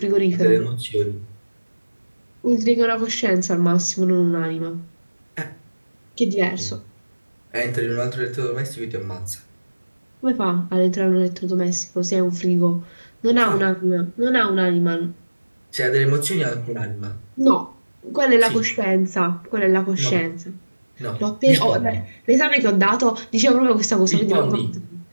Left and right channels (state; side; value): inverted; both; correlation -1.00